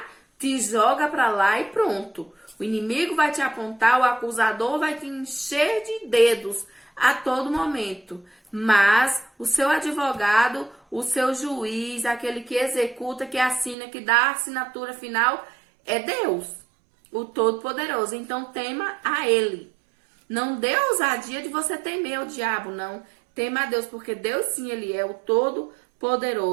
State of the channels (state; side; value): drops out; left; at 13.8 s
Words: te joga para lá e pronto. O inimigo vai te apontar, o acusador vai te encher de dedos a todo momento. Mas o seu advogado, o seu juiz, aquele que executa, que assina, que dá a assinatura final, é Deus, o Todo-Poderoso. Então tema a Ele. Não dê ousadia de você temer o diabo, não. Tema a Deus, porque Deus sim, Ele é o